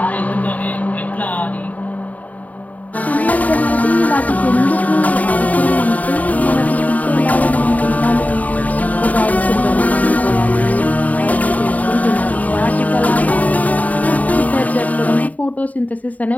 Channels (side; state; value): right; late; 0.073 ms